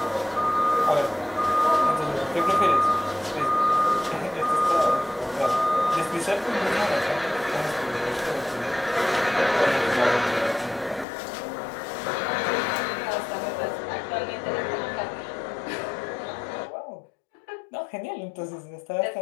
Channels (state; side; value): drops out; right; at 11.1 s